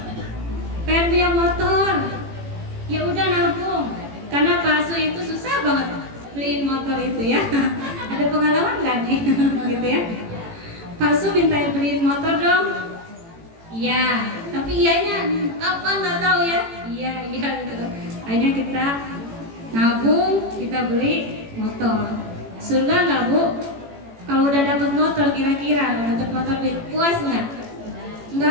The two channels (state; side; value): late; left; 18 ms